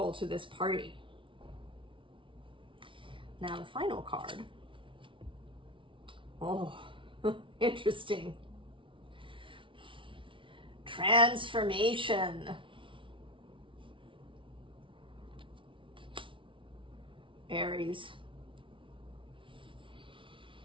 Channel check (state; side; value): late; left; 0.25 ms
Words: to this party. Now the final card. Oh, interesting. Transformation. Aries.